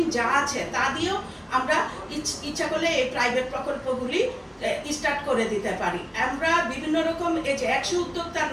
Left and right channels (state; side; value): identical; both; correlation 1.00